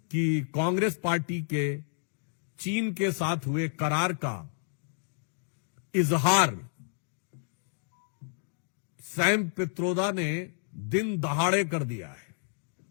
कि कांग्रेस पार्टी के चीन के साथ हुए करार का इजहार सैम पित्रोदा ने दिन दहाड़े कर दिया है।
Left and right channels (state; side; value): silent; right; digital silence